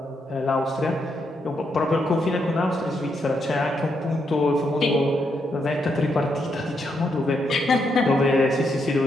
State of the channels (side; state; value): both; normal; correlation 0.79